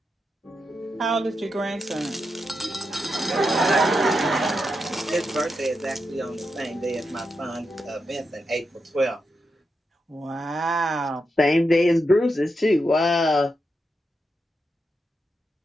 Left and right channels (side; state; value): both; normal; correlation 0.86